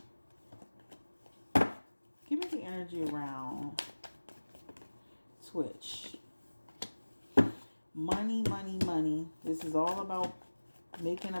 Give me the energy around Twitch. Money, money, money. This is all about making a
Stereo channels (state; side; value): inverted; both; correlation -1.00